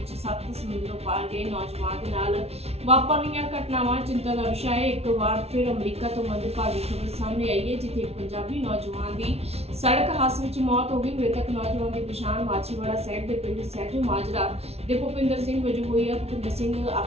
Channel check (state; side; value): late; left; 0.30 ms